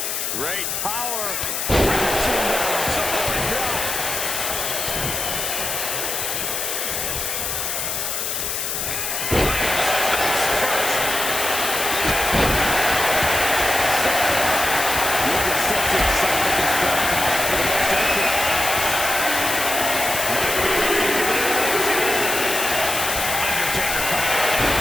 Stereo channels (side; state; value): left; noise; hiss, 2 dB below the sound